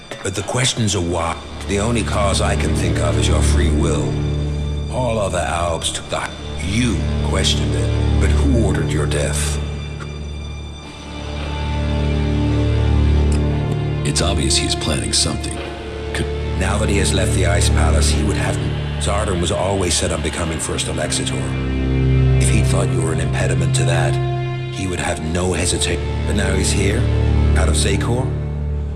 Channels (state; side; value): identical; both; correlation 1.00